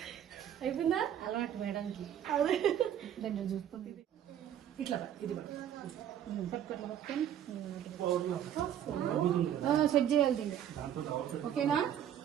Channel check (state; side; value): quieter; left; 10.2 dB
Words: అయిపోయిందా అలవాటు మేడంకి. అదే దాన్ని చూసుకుంది. ఇట్లా ఇది పట్టుకొని సెట్ చేయాలి దీన్ని. ఓకేనా?